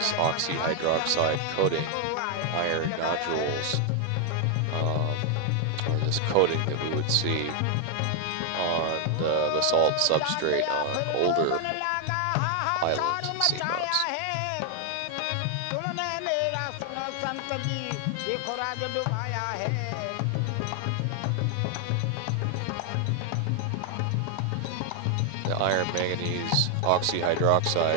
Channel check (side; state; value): both; different; correlation 0.00